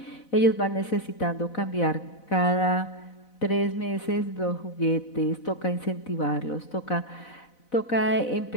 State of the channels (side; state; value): right; late; 4.0 ms